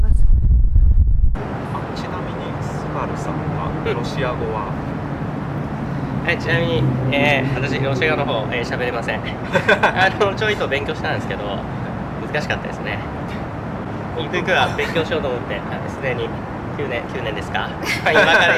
す。ちなみにスバルさんはロシア語ははい、ちなみに、私ロシア語の方喋れませんちょいと勉強したんですけど難しかったですね。ゆくゆくは勉強しようと思ってすでに9年ですか今から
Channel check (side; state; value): both; identical; correlation 1.00